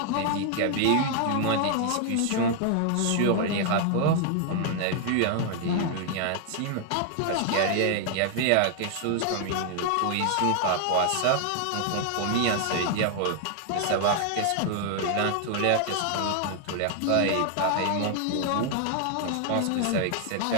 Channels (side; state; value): both; different; correlation 0.00